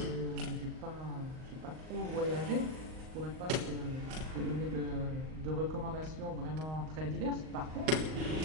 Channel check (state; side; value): late; left; 38 ms